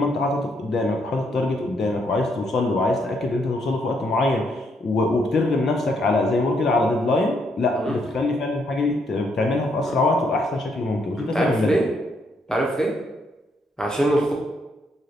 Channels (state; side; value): normal; both; correlation 0.74